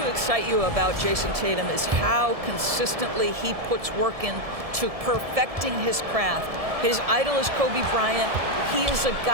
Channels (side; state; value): left; late; 1.7 ms